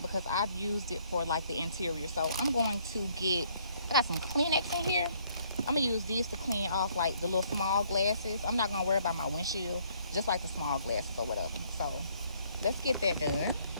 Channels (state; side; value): inverted; both; correlation -0.65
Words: because I've used it for like the interior. So I'm going to I got some Kleenex in here. I'm gonna use these to clean off like the little small glasses. I'm not gonna worry about my windshield, just like the small glasses or whatever. So let's get that done.